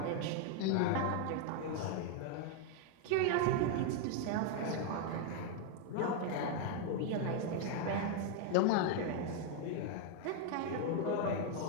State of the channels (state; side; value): different; both; correlation 0.00